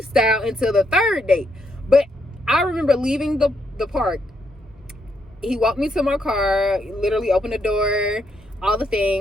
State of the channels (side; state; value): both; normal; correlation 0.77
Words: until the third date. But I remember leaving the park. He walked me to my car, literally opened the door, all the